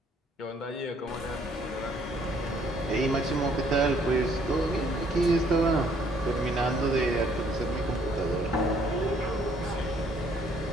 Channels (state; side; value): normal; both; correlation 0.64